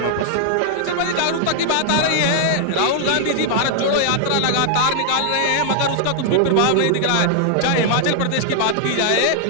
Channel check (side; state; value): both; different; correlation -0.01